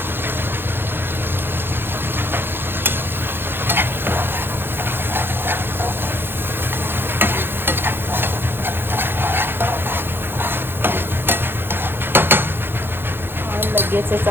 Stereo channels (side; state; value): left; late; 0.10 ms